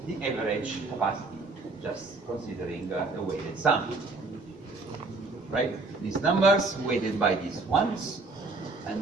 average capacity, just considering the weighted sum. Right? These numbers weighted by these ones,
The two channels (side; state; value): left; quieter; 3.5 dB